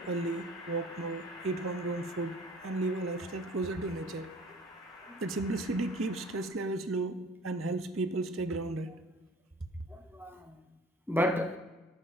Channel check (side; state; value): both; normal; correlation 0.48